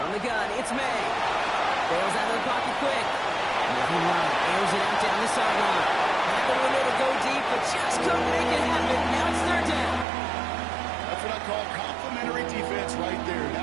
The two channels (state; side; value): drops out; left; at 10.1 s